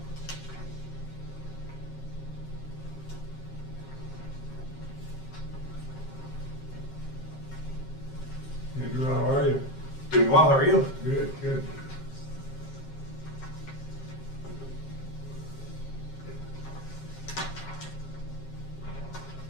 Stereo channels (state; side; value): late; right; 7.4 ms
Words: well, how are you? Good, good.